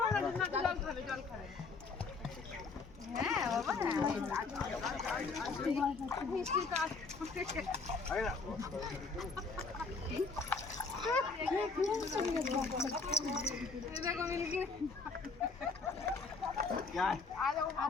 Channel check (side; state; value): right; quieter; 4.3 dB